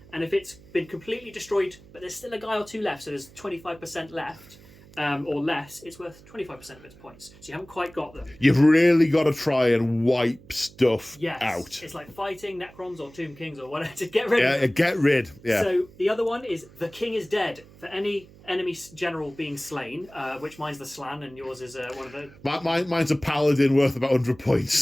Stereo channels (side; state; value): right; noise; hum, 23 dB below the sound